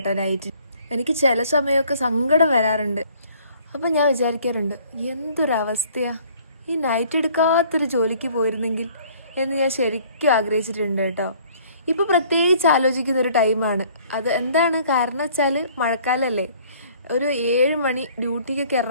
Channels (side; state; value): both; inverted; correlation -0.56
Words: നൈറ്റ്. എനിക്ക് ചില സമയമൊക്കെ സങ്കടം വരാറുണ്ട്. അപ്പം ഞാൻ വിചാരിക്കാറുണ്ട്, എന്തൊരവസ്ഥയാ, ഈ നൈറ്റ് എടുക്കാത്തൊരു ജോലിക്ക് പോയിരുന്നെങ്കിൽ എന്ന് ഞാൻ ശരിക്കും ആഗ്രഹിച്ചിട്ടുണ്ട് കേട്ടോ. ഇപ്പോൾ പ്രത്യേകിച്ച് ആലോചിക്കുന്ന ഒരു ടൈമാണ് അത്. എന്താണ് കാരണം വെച്ചാൽ മഴക്കാലമല്ലേ. ഒരു 7 മണി ഡ്യൂട്ടിക്കൊക്കെ